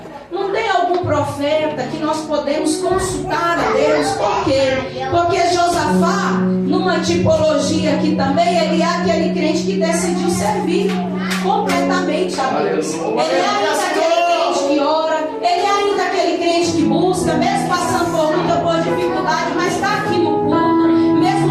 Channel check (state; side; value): identical; both; correlation 1.00